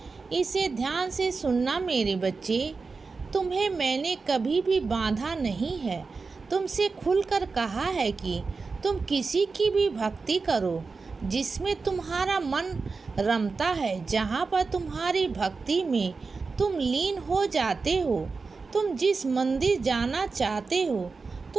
इसे ध्यान से सुनना मेरे बच्चे। तुम्हें मैंने कभी भी बांधा नहीं है। तुमसे खुलकर कहा है कि तुम किसी की भी भक्ति करो जिसमें तुम्हारा मन रमता है, जहाँ पर तुम्हारी भक्ति में तुम लीन हो जाते हो। तुम जिस मंदिर जाना चाहते हो,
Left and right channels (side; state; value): left; quieter; 4.4 dB